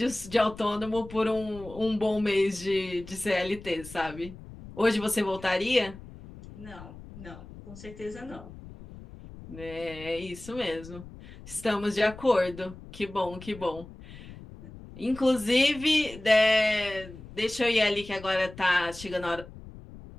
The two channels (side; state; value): left; noise; rumble, 16 dB below the sound